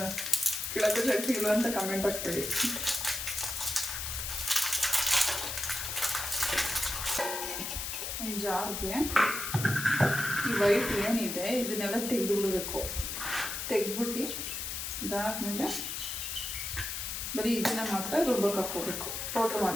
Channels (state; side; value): noise; left; hiss, 4 dB below the sound